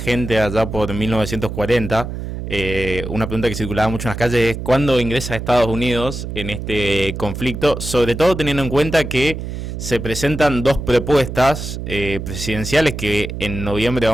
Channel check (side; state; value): right; noise; hum, 7 dB below the sound